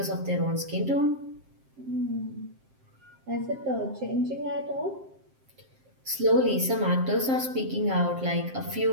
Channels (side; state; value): left; late; 7.6 ms